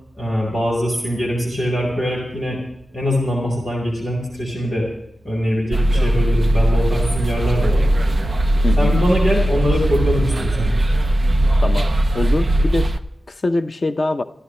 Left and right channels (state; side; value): normal; both; correlation 0.93